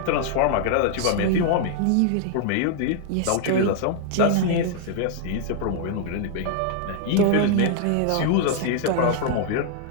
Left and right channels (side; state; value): both; different; correlation 0.00